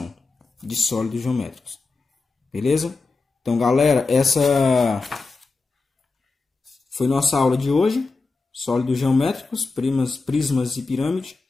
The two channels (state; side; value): quieter; right; 3.9 dB